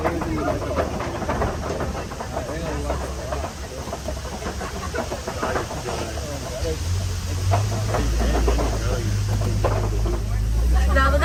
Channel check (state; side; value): identical; both; correlation 1.00